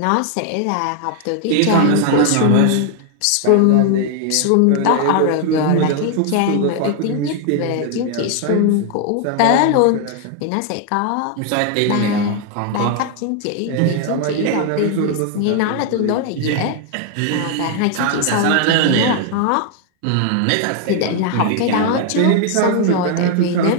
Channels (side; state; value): both; different; correlation 0.00